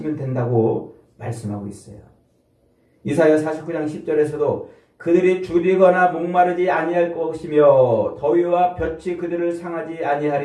된다고 말씀하고 있어요. 이사야 49장 10절에서도 그들이 줄이거나 목마르지 아니할 것이며 더위와 볕이 그들을 상하지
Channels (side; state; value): both; identical; correlation 1.00